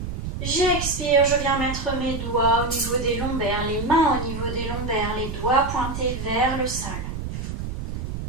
J'expire, je viens mettre mes doigts au niveau des lombaires, les mains au niveau des lombaires, les doigts pointés vers le sol.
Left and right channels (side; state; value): right; noise; rumble, 6 dB below the sound